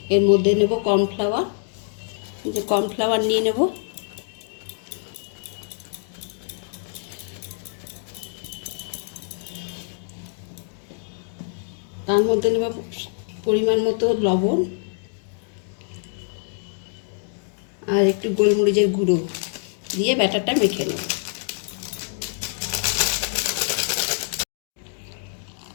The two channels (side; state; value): right; silent; 56 dB below the other